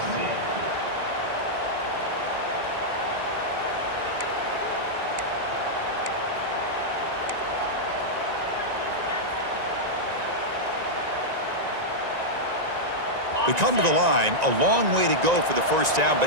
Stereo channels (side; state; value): left; late; 1.9 ms